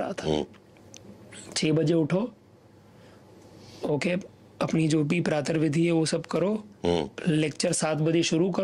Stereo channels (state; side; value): identical; both; correlation 1.00